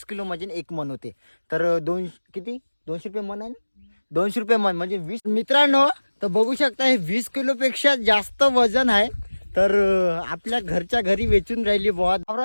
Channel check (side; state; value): both; inverted; correlation -1.00